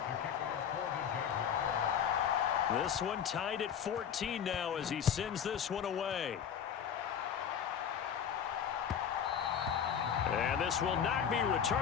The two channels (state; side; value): quieter; right; 8.2 dB